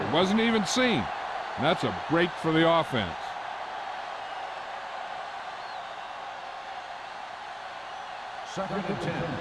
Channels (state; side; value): identical; both; correlation 1.00